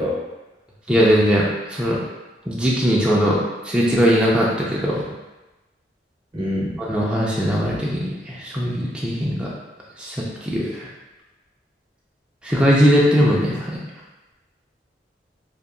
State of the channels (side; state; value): both; normal; correlation 0.77